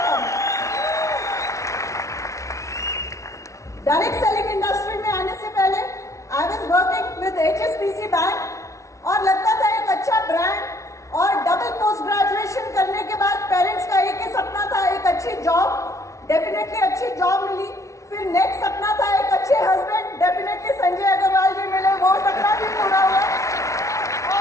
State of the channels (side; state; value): right; late; 0.15 ms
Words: Direct selling industry में आने से पहले I was working with HSBC bank और लगता था एक अच्छा ब्रांड और डबल पोस्ट ग्रेजुएशन करने के बाद पेरेंट्स का एक ही सपना था, एक अच्छी जॉब। डेफिनेटली अच्छी जॉब मिली। फिर नेक्स्ट सपना था एक अच्छे हस्बैंड, डेफिनेटली संजय अग्रवाल जी मिले, वो सपना भी पूरा हुआ।